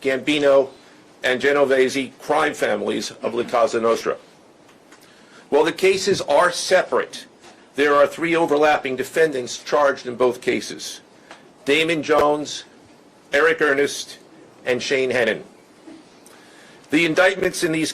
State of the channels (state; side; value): identical; both; correlation 1.00